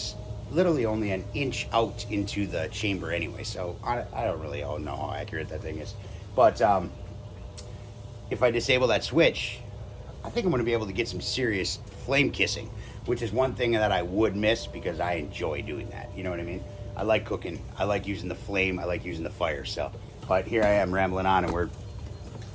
literally only an inch out into the chamber anyway, so I don't really know how accurate that thing is. But if I disable that switch, I think I'm going to be able to get some serious flame kissing, which is one thing that I would miss because I enjoy doing that, you know what I mean? I like cooking, I like using the flame, I like using the fire. So, but here I am rambling on and we're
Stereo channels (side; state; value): both; identical; correlation 1.00